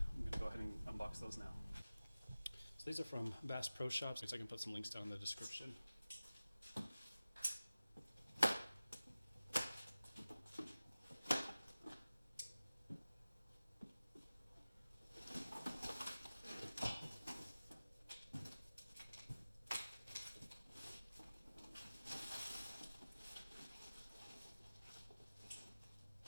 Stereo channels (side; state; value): both; inverted; correlation -0.97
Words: going to go ahead and unbox those now. So these are from Bass Pro Shops, so I can put some links down in the description.